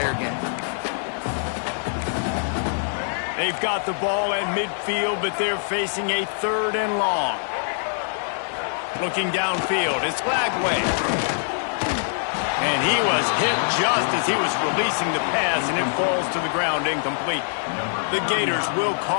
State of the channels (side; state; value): right; silent; digital silence